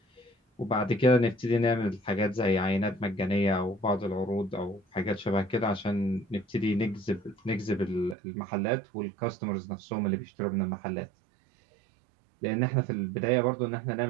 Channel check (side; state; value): left; drops out; at 8.2 s